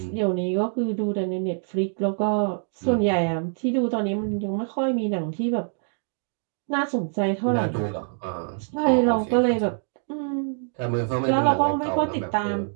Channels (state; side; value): silent; left; digital silence